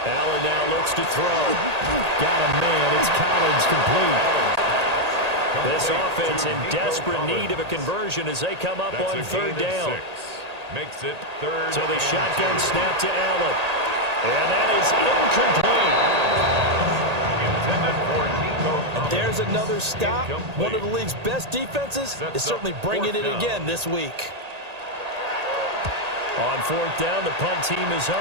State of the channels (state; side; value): late; left; 1.8 ms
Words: Allen now looks to throw. Got a man. It's Collins complete. This offense in desperate need of a conversion as they come up on 3rd down. Makes it 3rd. So the shotgun snap to Allen. And that is incomplete. Intended for Nico. And there's another stop. One of the league's best defenses is certainly bringing it again this week. On 4th down, the punt team is